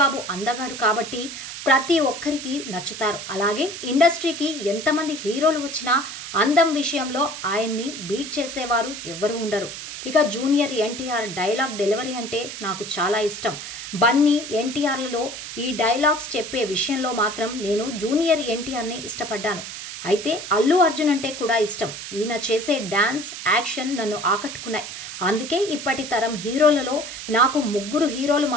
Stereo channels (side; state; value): right; noise; hiss, 9 dB below the sound